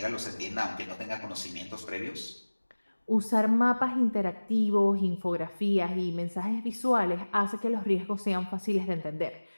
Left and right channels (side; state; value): both; inverted; correlation -1.00